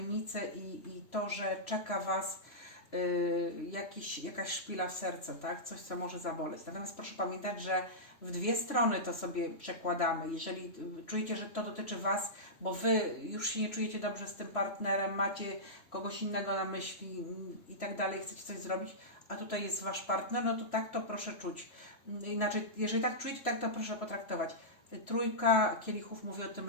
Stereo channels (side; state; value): right; late; 3.0 ms